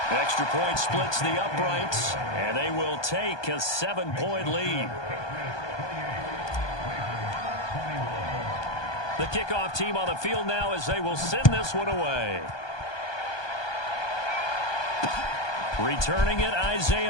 Extra point splits the uprights, and they will take a 7-point lead. The kickoff team on the field now as they will send this one away. Returning it,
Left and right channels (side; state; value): right; late; 1.2 ms